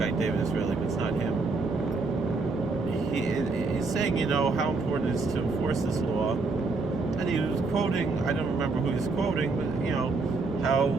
David Israeli, but it's not him. He's saying, how important it is to enforce this law, and he was quoting, I don't remember who he's quoting, but how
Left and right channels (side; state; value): left; quieter; 3.9 dB